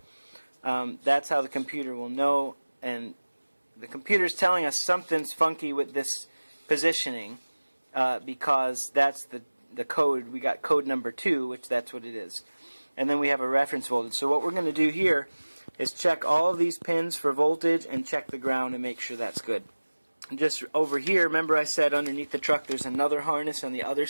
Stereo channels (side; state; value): both; inverted; correlation -1.00